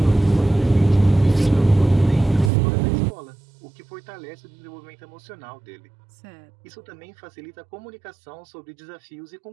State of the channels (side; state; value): left; drops out; at 2.5 s